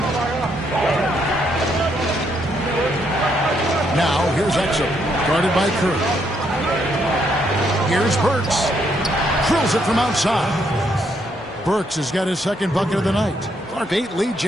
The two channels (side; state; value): both; normal; correlation 0.74